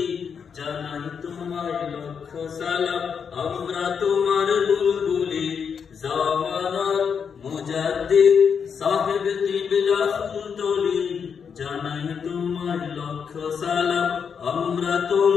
জানাই তোমায় লক্ষ সালাম আমরা তোমার বুলবুলি জামানার মুজাদ্দিদ সাহেব কিবলা ফুলতলি জানাই তোমায় লক্ষ সালাম আমরা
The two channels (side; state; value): right; quieter; 6.7 dB